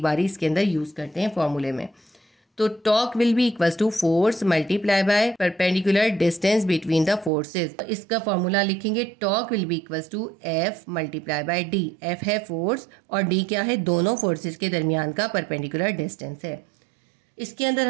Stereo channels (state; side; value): drops out; left; at 7.3 s